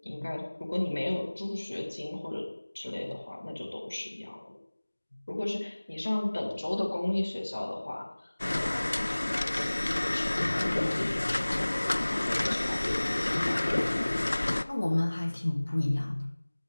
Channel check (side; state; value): both; inverted; correlation -1.00